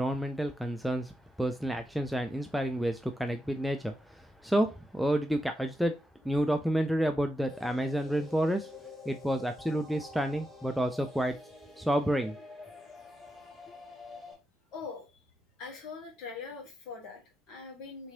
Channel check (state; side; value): normal; both; correlation 0.87